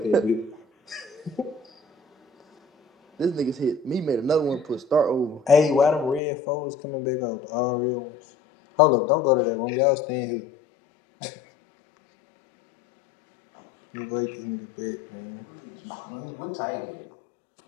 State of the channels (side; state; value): right; drops out; at 6.2 s